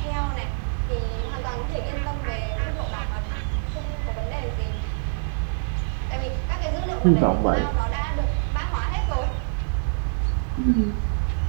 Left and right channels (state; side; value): silent; left; digital silence